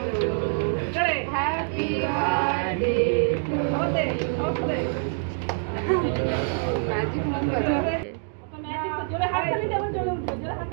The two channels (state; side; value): silent; left; 61 dB below the other